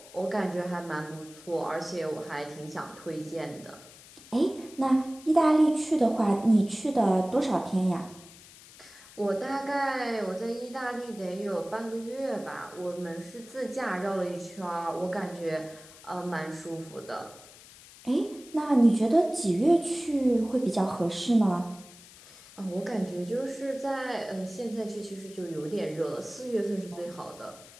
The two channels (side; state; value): left; noise; hiss, 20 dB below the sound